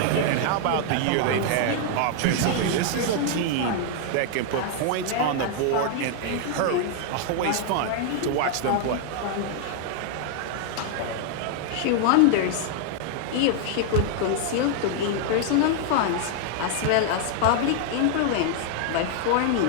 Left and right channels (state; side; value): different; both; correlation 0.00